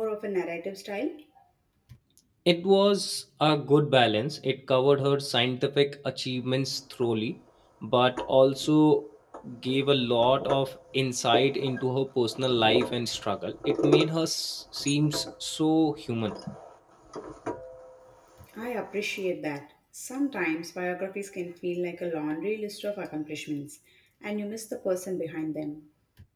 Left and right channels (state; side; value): identical; both; correlation 1.00